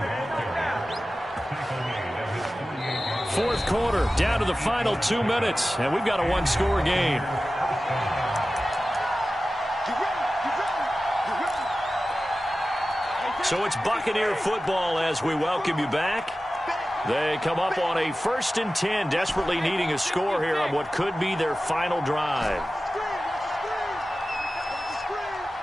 4th quarter, down to the final 2 minutes, and we've got a 1-score game. So it's Buccaneer football as we welcome you back. They come up on a 1st and 10, desperately needing a score here on what could be their final drive.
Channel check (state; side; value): normal; both; correlation 0.95